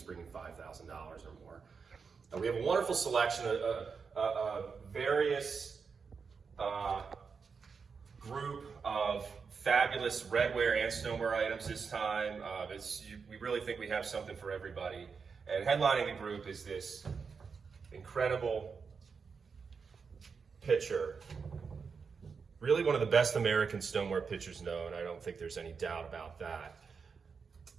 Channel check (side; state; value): left; quieter; 5.5 dB